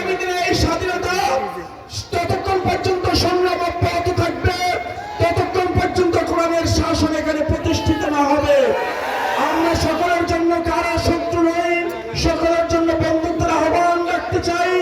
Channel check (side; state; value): both; identical; correlation 1.00